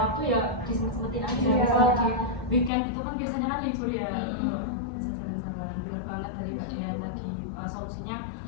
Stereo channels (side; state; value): right; drops out; at 2.7 s